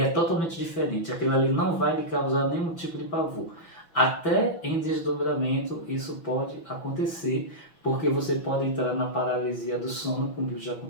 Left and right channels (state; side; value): late; right; 6.0 ms